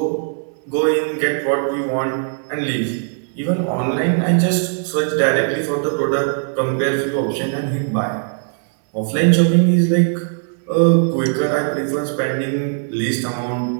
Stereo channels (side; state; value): left; silent; digital silence